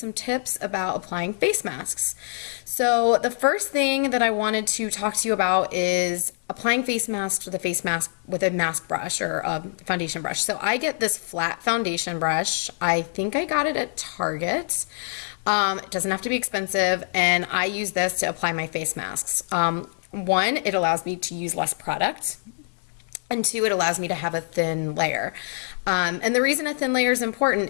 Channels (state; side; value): silent; right; 57 dB below the other